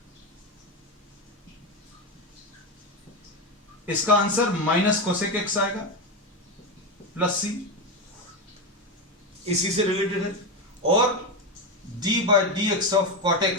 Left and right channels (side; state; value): both; normal; correlation 0.13